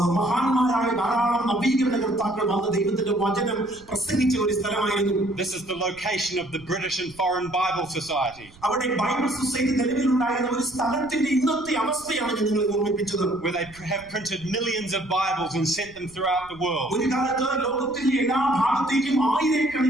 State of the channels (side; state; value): right; noise; rumble, 24 dB below the sound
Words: മഹാന്മാരായ ധാരാളം നവീകരണകർത്താക്കൾ വന്ന് ദൈവത്തിന്റെ വചനം പ്രസംഗിച്ച ഒരു സ്ഥലമായിരുന്നു. This is the location of the British and Foreign Bible Society. അവിടെ ബൈബിൾ സൊസൈറ്റി നിലവിലുണ്ടായിരുന്ന ഒരു സ്ഥലത്തിന്റെ ഇന്നത്തെ അവസ്ഥയാണ് ഞാൻ നിങ്ങളെ ഓർമ്മിപ്പിച്ചത്. Where they have printed millions of Bibles and sent them throughout the world. ഒരു കാലത്ത് ലോകത്തിന്റെ എല്ലാ ഭാഗത്തേക്കും